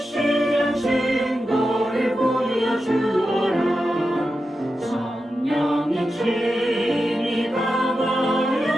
증거를 보여주어라. 성령이 친히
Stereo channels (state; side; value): normal; both; correlation 0.90